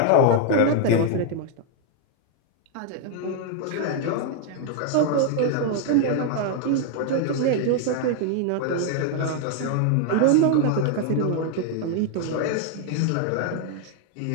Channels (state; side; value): different; both; correlation 0.00